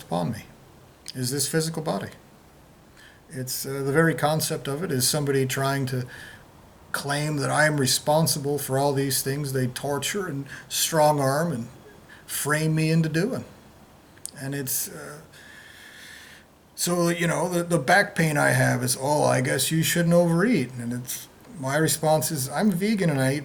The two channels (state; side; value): identical; both; correlation 1.00